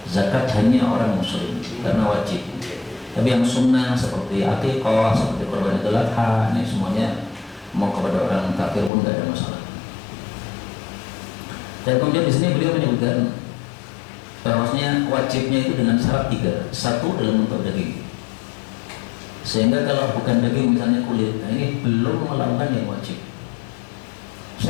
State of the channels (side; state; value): right; drops out; at 8.9 s